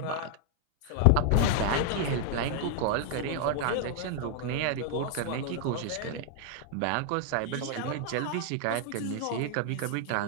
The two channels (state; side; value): different; both; correlation 0.00